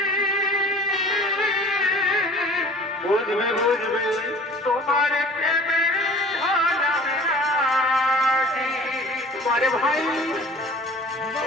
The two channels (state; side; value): normal; both; correlation 0.46